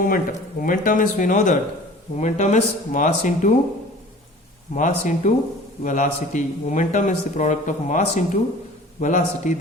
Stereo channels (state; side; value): normal; both; correlation 0.45